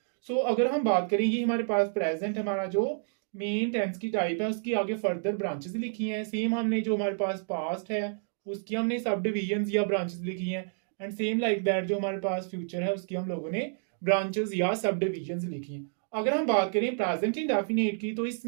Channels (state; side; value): silent; left; digital silence